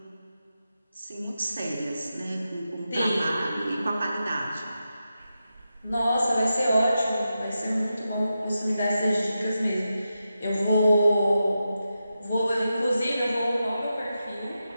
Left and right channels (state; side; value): inverted; both; correlation -0.89